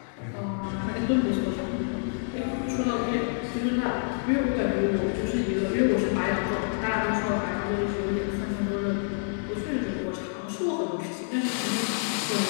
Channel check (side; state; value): right; silent; digital silence